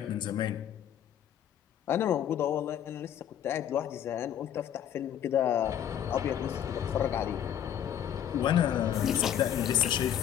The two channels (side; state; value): right; quieter; 10.0 dB